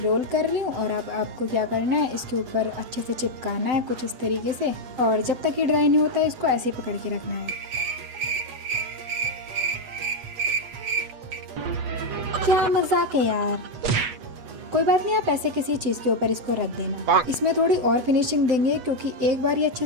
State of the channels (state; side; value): late; left; 8.2 ms